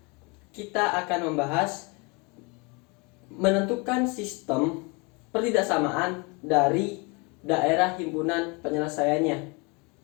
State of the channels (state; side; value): quieter; right; 29.5 dB